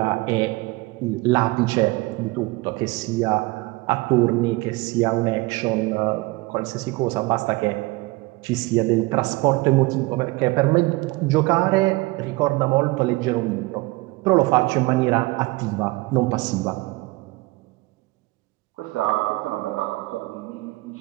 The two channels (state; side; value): quieter; left; 22.6 dB